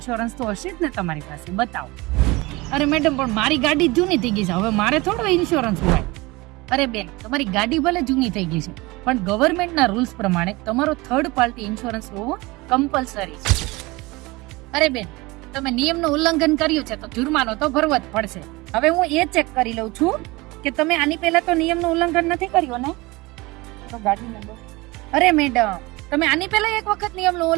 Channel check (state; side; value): quieter; left; 22.8 dB